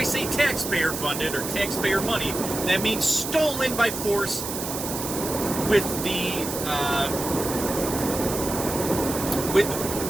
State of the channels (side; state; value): right; noise; hiss, 6 dB below the sound